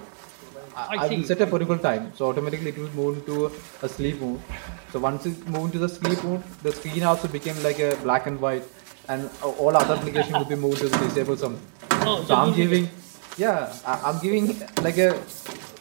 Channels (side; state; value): left; silent; digital silence